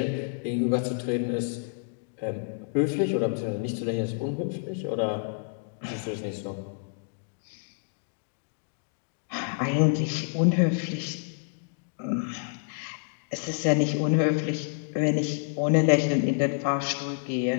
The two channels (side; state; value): right; silent; digital silence